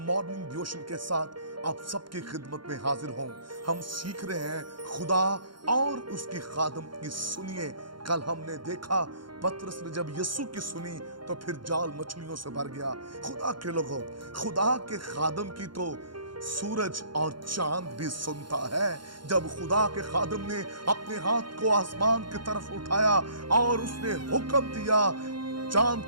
मॉर्निंग डिवोशन के साथ आप सबकी खिदमत में हाजिर हूँ। हम सीख रहे हैं खुदा और उसकी खादम की। सुनिए, कल हमने देखा पतरस ने जब यीशु की सुनी तो फिर जाल मछलियों से भर गया। खुदा के लोगों, खुदा के खादम की तो सूरज और चांद भी सुनता है। जब खुदा के खादम ने अपने हाथ को आसमान की तरफ उठाया और उसने हुक्म दिया चांद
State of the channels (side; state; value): left; late; 0.72 ms